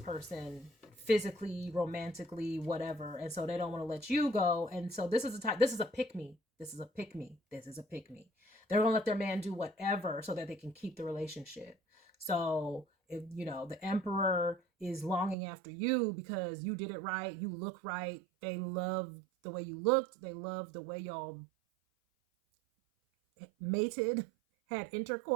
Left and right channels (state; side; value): drops out; left; at 15.4 s